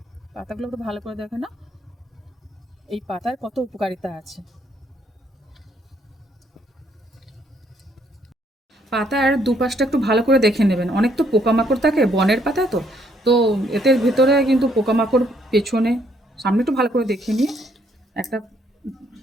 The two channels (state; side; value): normal; both; correlation 0.69